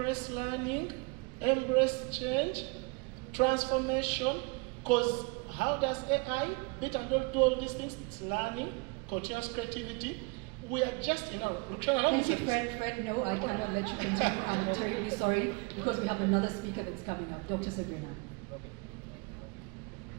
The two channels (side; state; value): left; quieter; 30.1 dB